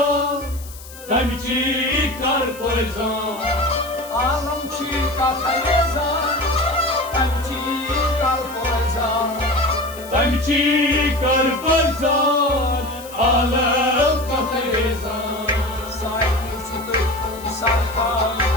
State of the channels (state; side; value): noise; left; hiss, 17 dB below the sound